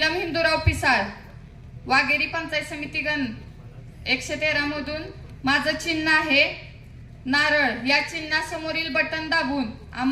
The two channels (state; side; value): identical; both; correlation 1.00